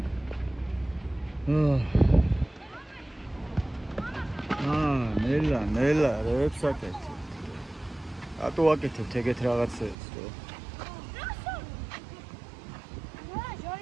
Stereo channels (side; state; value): left; drops out; at 10.0 s